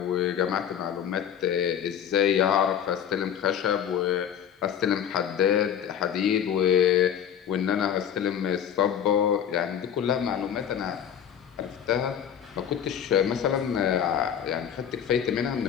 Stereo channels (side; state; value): right; quieter; 9.0 dB